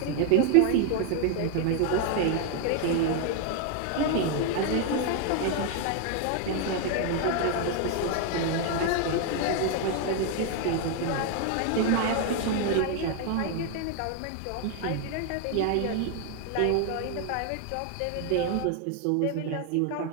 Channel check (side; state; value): both; different; correlation 0.00